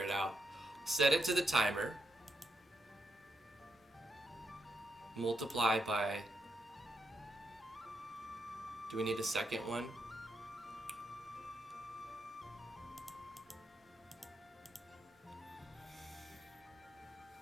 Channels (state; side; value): normal; both; correlation 0.81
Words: out. Set it to the timer, multiply by, do we need a second one?